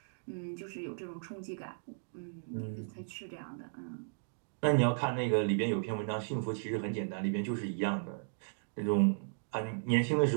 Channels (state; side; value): silent; left; digital silence